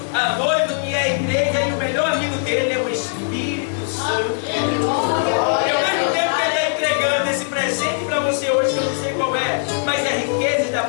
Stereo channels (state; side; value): silent; right; 66 dB below the other